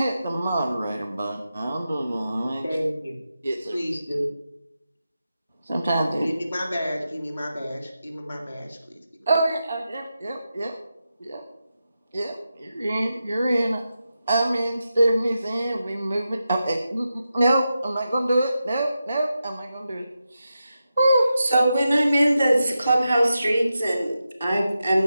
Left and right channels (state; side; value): inverted; both; correlation -0.90